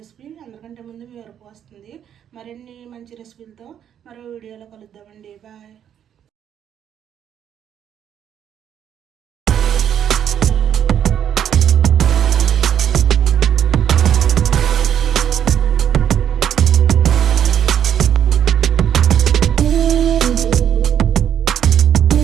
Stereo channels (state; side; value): quieter; left; 9.4 dB